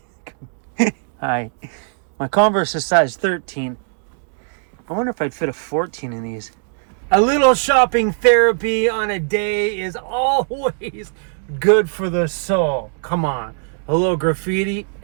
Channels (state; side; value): silent; left; digital silence